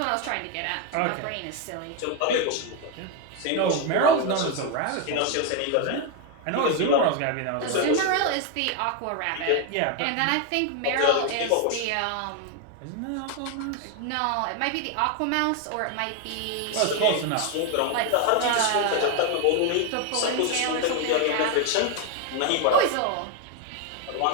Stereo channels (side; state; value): both; different; correlation 0.01